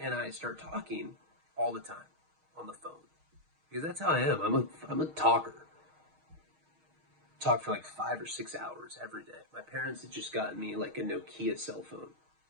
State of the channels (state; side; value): late; left; 6.4 ms